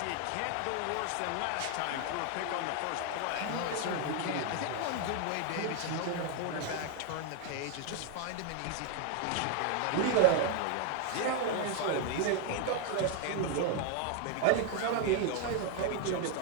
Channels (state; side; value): different; both; correlation 0.00